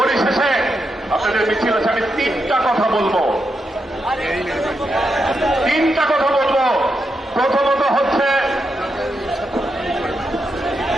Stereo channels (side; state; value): both; normal; correlation 0.84